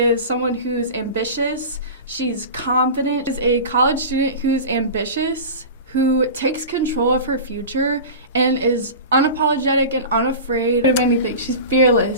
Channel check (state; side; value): inverted; both; correlation -0.32